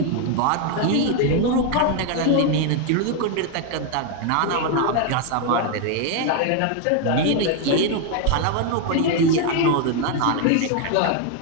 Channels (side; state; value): both; different; correlation 0.01